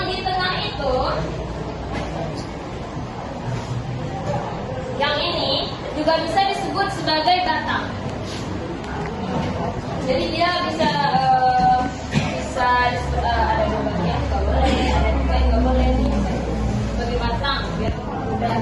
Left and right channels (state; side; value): identical; both; correlation 1.00